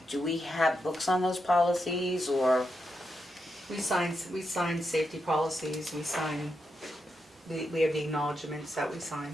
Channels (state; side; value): normal; both; correlation 0.85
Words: do we have books on those policies, or? We sign safety policies, we have the acknowledgements that we sign.